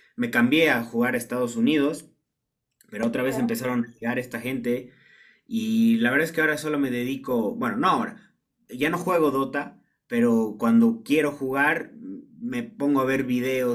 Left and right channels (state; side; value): identical; both; correlation 1.00